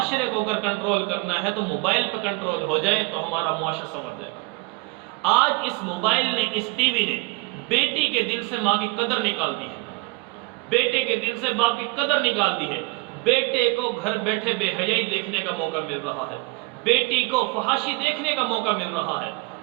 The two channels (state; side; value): quieter; left; 25.6 dB